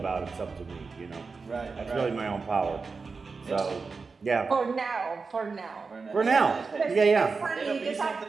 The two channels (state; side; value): quieter; left; 4.6 dB